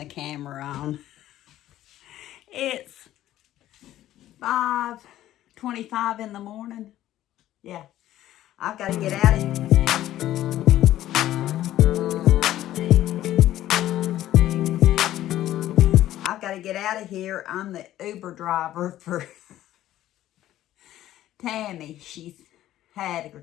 camera on. It's 5:25 in the morning. Yeah, I've got to get out of here. I've got to get out of here. I'm the Uber driver for Tammy. She's had her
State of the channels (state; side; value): quieter; right; 13.5 dB